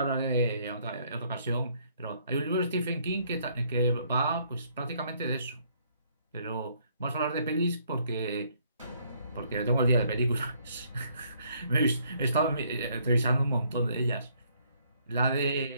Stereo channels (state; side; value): inverted; both; correlation -0.66